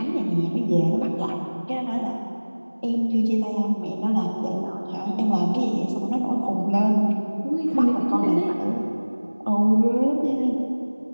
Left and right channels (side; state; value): both; inverted; correlation -1.00